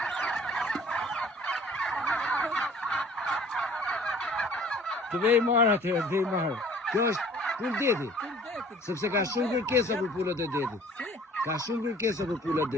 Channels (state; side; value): normal; both; correlation 0.52